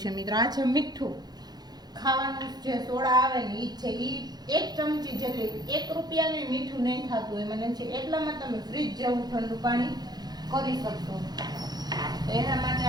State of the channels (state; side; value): late; left; 0.19 ms